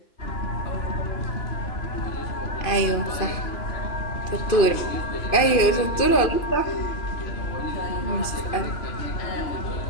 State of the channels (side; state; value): right; late; 2.5 ms